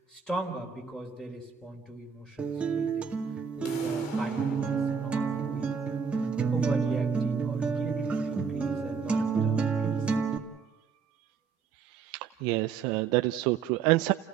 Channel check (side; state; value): left; quieter; 6.4 dB